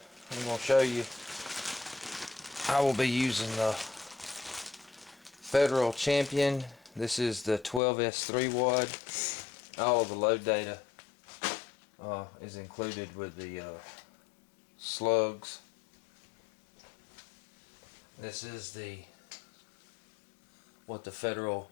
I'm going to show you I will be using the Federal Champion. This is the 12S3 wad. All of the load data is included with the Slugs. This is what the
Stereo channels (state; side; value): drops out; right; at 7.8 s